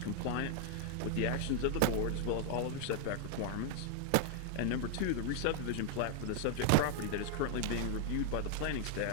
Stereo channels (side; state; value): both; different; correlation 0.00